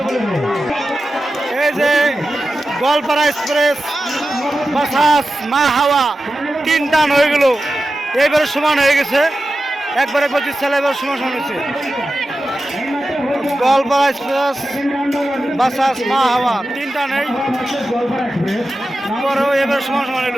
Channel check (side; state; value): both; normal; correlation 0.92